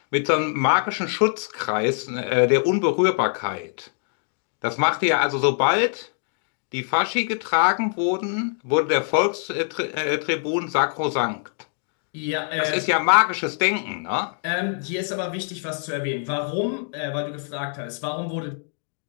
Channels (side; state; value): right; silent; 63 dB below the other